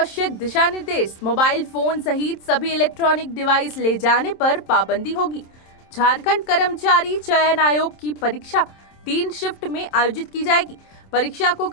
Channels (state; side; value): late; right; 27 ms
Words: दिशा निर्देश। मोबाइल फोन सहित सभी इलेक्ट्रॉनिक डिवाइस ले जाने पर पाबंदी होगी। झारखंड कर्मचारी चयन आयोग की परीक्षा 3 शिफ्ट में आयोजित की जाएगी। परीक्षा को